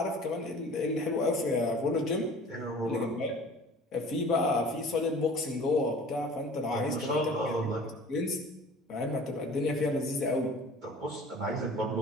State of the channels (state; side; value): normal; both; correlation 0.45